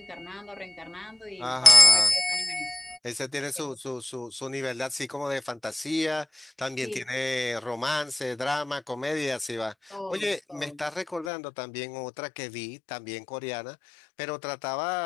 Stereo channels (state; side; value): drops out; right; at 11.3 s